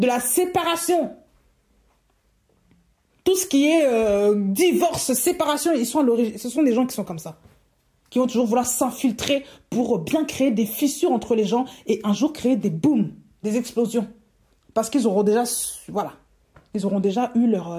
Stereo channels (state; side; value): identical; both; correlation 1.00